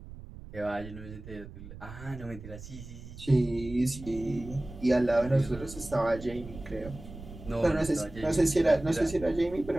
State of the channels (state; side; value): noise; right; rumble, 14 dB below the sound